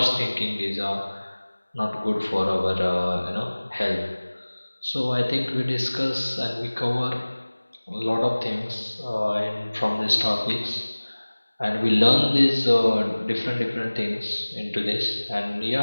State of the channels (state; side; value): inverted; both; correlation -1.00